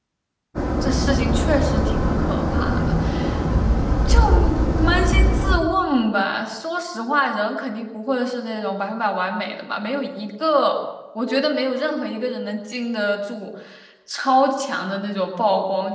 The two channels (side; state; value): both; identical; correlation 1.00